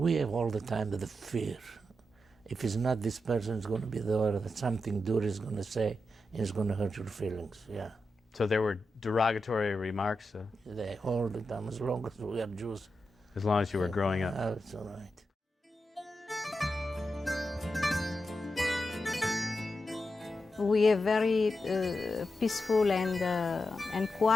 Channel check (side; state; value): both; normal; correlation 0.88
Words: have all the time the fear. If it's not this person, it's going to be the other, that something Dura is going to say, and it's going to hurt your feelings, yeah. So there were derogatory remarks? They all the time, as long as we are Jews. As long as you were growing up? That's all right. We have very peaceful and